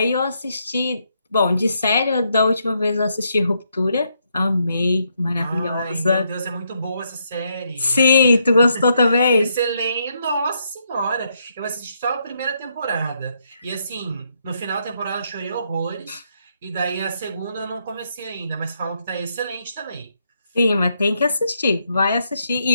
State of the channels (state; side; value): inverted; both; correlation -0.76